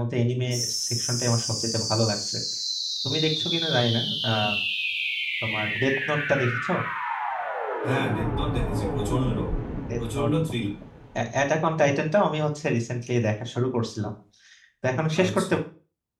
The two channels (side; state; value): both; identical; correlation 1.00